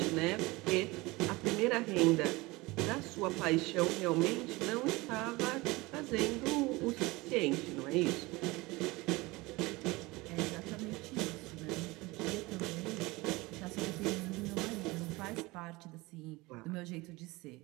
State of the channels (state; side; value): quieter; left; 22.3 dB